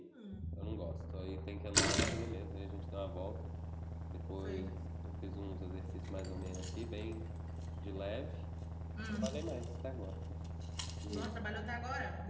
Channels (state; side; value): identical; both; correlation 1.00